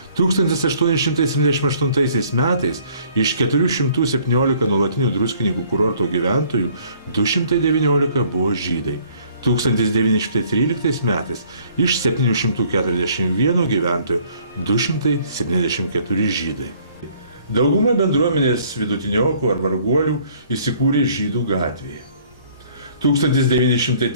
1878 metais iš 417 nuolatinių Druskininkų kurorto gyventojų 219 buvo žydai. 1913 metais iš 741 gyventojų 274 žydai. Dauguma bendruomenės vidutiniokų ar varguolių įsikūrė Žydų gatvėje.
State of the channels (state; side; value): inverted; both; correlation -0.59